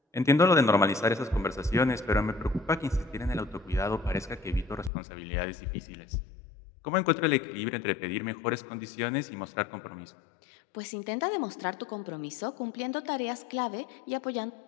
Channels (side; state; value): right; drops out; at 4.9 s